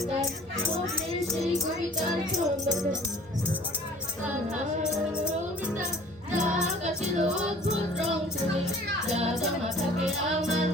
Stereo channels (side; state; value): both; normal; correlation 0.50